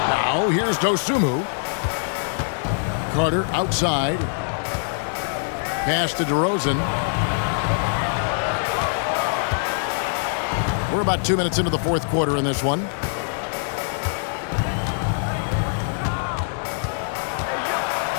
Now here's Dosunmu. Carter outside. Pass to DeRozan. We're about 2 minutes into the fourth quarter in this one.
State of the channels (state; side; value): silent; right; digital silence